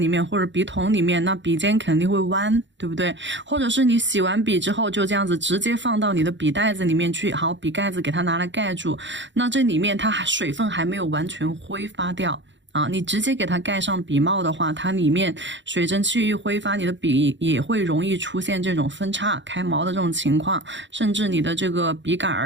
面或者笔筒里面，那笔尖肯定会弯，对不对？或者是你洗完笔之后就这样子直接放到你的笔袋子里面去，好，笔盖子给它拿来盖住，那这里面它水分还没有完全挥发掉啊，你直接给它盖上笔帽的话，它里面水蒸气一挥发，你的笔也会容易出现这种分叉开毛的这种情况，甚至你的这个笔杆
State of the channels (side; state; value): left; late; 0.54 ms